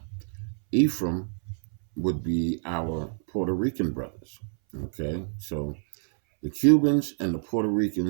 Ephraim would be our Puerto Rican brothers. Okay, so the Cubans and the Puerto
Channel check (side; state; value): left; silent; 60 dB below the other